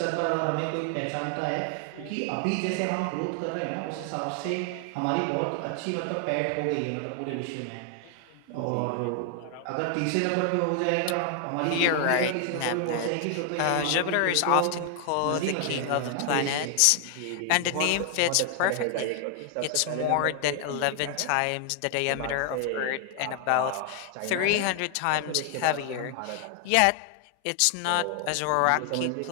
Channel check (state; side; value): different; both; correlation 0.00